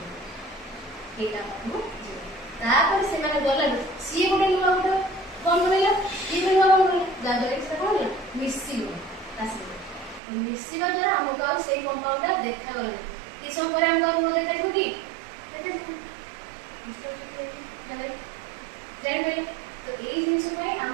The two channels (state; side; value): drops out; left; at 10.2 s